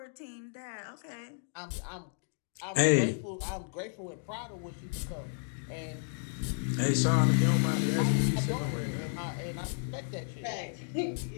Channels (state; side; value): silent; right; digital silence